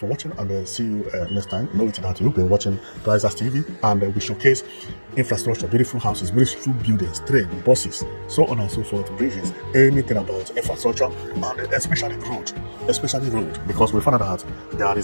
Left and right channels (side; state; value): both; inverted; correlation -1.00